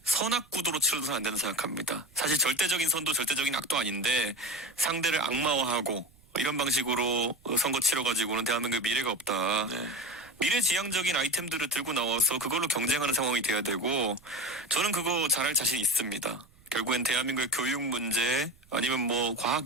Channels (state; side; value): noise; right; rumble, 28 dB below the sound